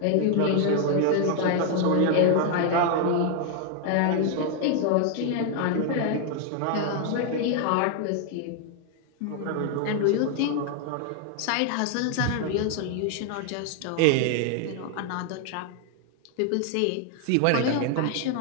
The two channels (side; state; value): both; different; correlation 0.00